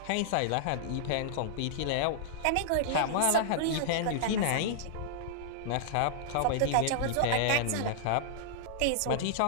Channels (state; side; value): different; both; correlation -0.01